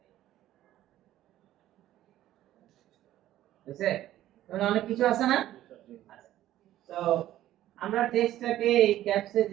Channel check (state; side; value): quieter; left; 13.5 dB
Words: বুঝছে? মানে অনেক কিছু আছে না? তো আমরা টেক্সটটাকে এই ক্যাপসে